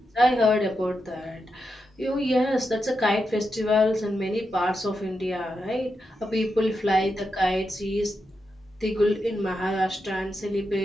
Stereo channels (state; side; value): normal; both; correlation 0.86